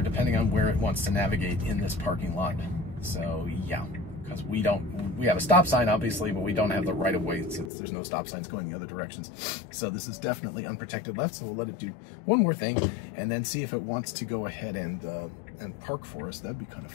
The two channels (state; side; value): drops out; right; at 7.7 s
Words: depending on where it wants to navigate in this parking lot. So yeah, because we have a stop sign obviously, but we don't have the right of way since there's no stop signs going the other directions. So this is definitely unprotected left, so we'll let it do one more thing and then see if it wants to go ahead and park for us. That'd be kind of